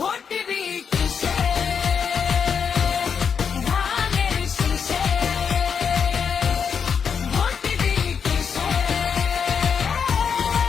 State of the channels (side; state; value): right; quieter; 6.7 dB